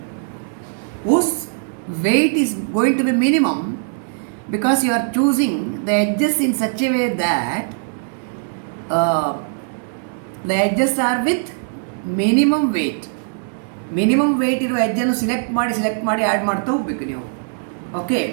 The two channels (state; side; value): silent; left; digital silence